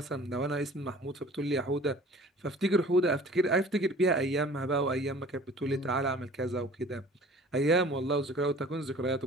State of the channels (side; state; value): both; normal; correlation 0.47